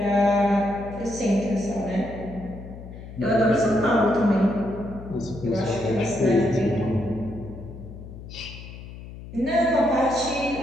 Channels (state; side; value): noise; left; hum, 14 dB below the sound